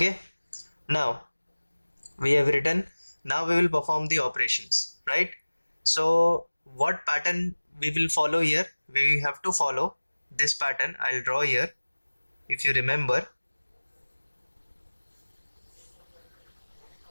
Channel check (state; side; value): inverted; both; correlation -1.00